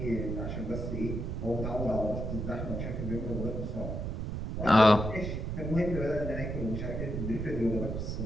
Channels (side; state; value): right; noise; rumble, 3 dB below the sound